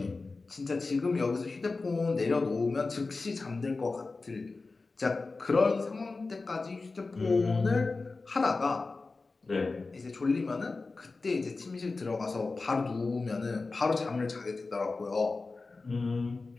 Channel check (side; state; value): right; quieter; 3.8 dB